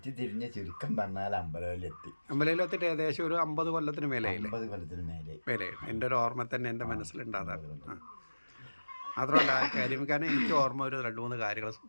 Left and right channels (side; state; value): both; inverted; correlation -1.00